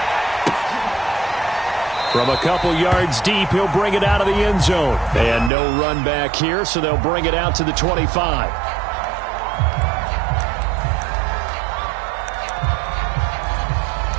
From a couple yards deep, he'll bring it out of the end zone. And no run back here, so they'll bring it out to the 25.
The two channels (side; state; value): left; drops out; at 5.5 s